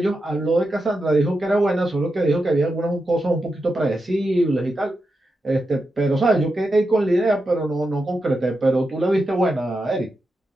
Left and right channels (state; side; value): normal; both; correlation 0.88